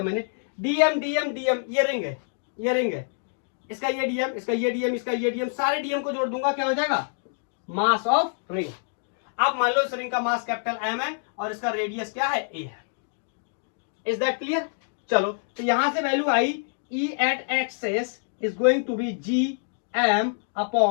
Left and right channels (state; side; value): silent; right; digital silence